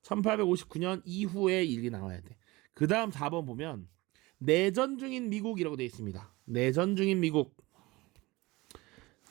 1859년 이후의 일이 나와야 돼. 그 다음 4번 보면 내전 중인 미국이라고 되어 있습니다. 내전 중인 미국.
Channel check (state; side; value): quieter; left; 21.8 dB